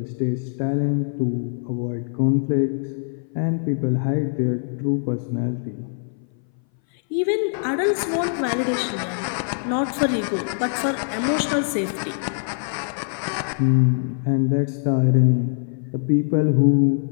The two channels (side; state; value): right; silent; 59 dB below the other